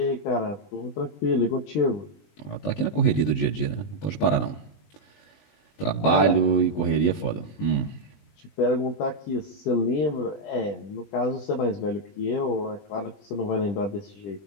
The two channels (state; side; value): late; right; 20 ms